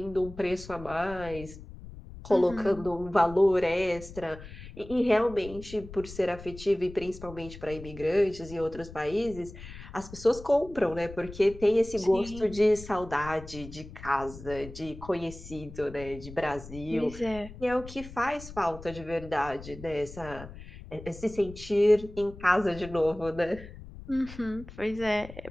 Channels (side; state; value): left; noise; rumble, 15 dB below the sound